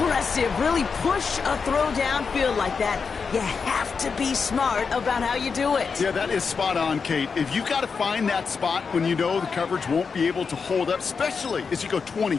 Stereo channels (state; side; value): quieter; right; 5.4 dB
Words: really push a throw downfield like that, you have to be smart about how you do it. Yeah, that is spot on, Kate. If you've got to find that spot when you know the coverage won't be able to hold up, especially as you go 20,